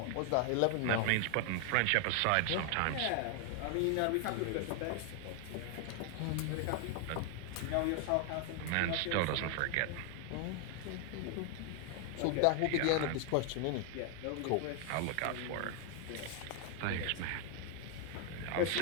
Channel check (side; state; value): both; different; correlation 0.00